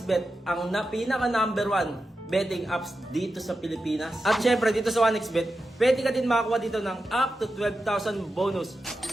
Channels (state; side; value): normal; both; correlation 0.90